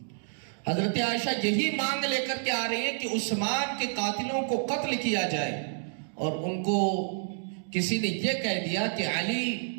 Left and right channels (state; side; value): silent; left; digital silence